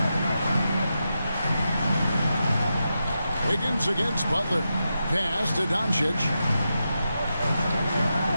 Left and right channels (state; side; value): inverted; both; correlation -0.88